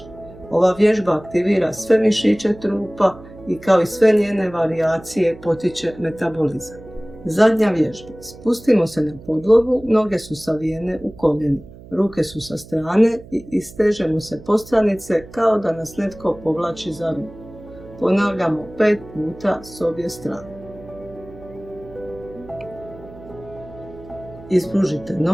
Ova vježba aktivira sve mišiće trupa i kao i sve njene varijacije potiče metabolizam. Zadnja vježba. Spustimo se na podlogu, noge su savijene u koljenima. Ruke su sa strane i istežemo se postranice kao da nas netko povlači za ruku. Ponavljamo 5 puta s obje strane. Ispružite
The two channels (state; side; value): noise; right; hum, 19 dB below the sound